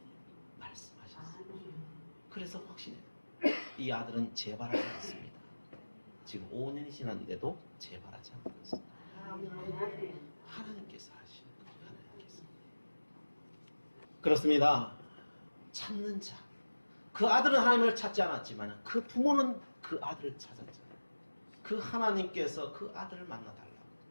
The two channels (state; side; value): inverted; both; correlation -1.00